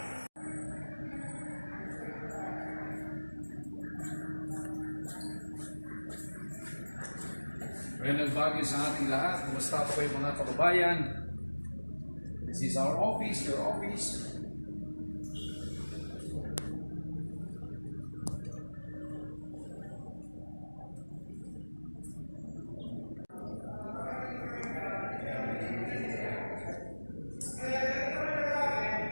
Magandang bagay sa ating lahat. Kumusta po kayo mga kababayan? This is our office, your office.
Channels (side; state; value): both; inverted; correlation -1.00